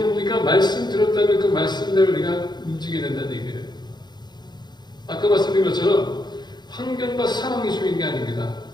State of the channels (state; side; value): late; right; 0.21 ms